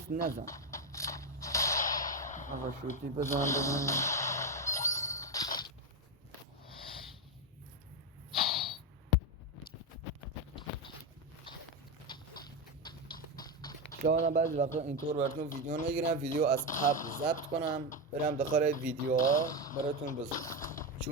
نزن. آقا شوتی بزن. شاید بعضی وقتا اینطور براتون ویدیو نگیرم، ویدیو از قبل ضبط کنم برم داخل ویدیوها براتون بذارم،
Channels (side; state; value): both; normal; correlation 0.11